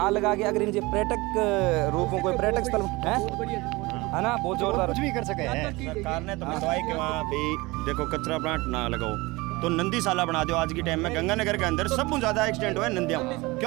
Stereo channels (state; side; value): quieter; left; 22.6 dB